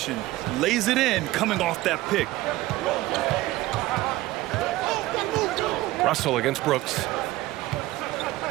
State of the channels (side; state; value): left; quieter; 17.6 dB